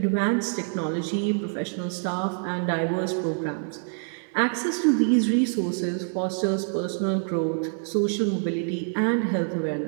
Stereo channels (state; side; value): silent; left; 61 dB below the other